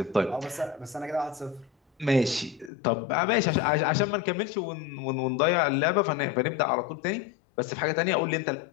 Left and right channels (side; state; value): right; drops out; at 2.7 s